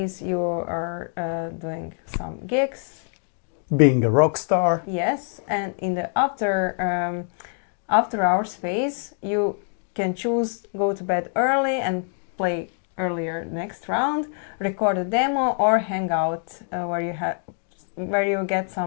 you are doing some gigs. Being a rock star. Yes, and in the after hours phase you can choose go to bed early and play earlier next round, record a demo, or hang out where you get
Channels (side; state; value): right; silent; 56 dB below the other